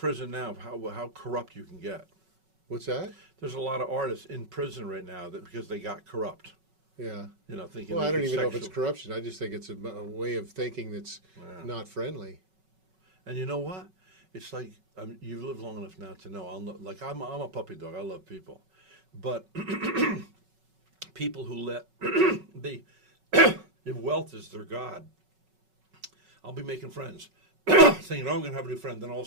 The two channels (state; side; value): late; left; 5.3 ms